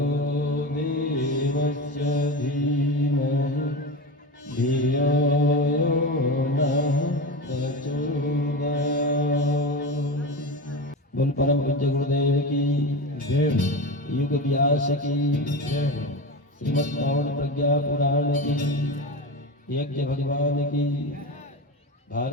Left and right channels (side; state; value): both; normal; correlation 0.24